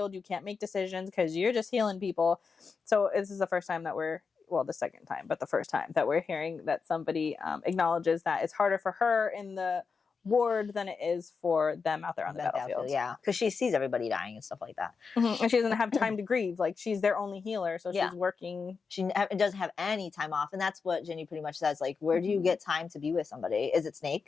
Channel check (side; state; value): right; quieter; 5.2 dB